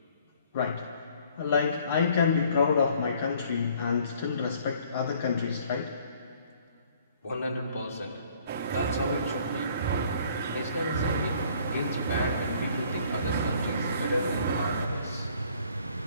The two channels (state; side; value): inverted; both; correlation -0.59